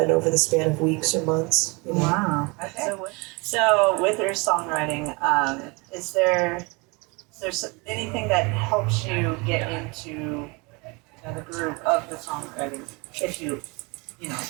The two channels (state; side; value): quieter; left; 28.3 dB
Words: over the span of weeks or months. You know? Wow. Okay. So with your songwriting, is there anything that helps you get into the groove of the songwriting? If you